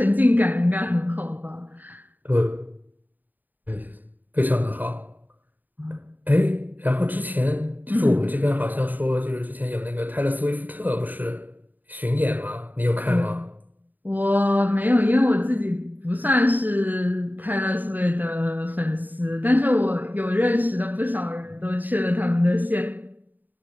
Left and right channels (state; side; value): late; left; 0.085 ms